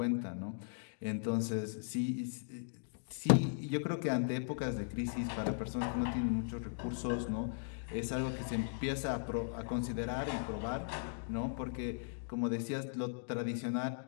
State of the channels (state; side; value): silent; right; digital silence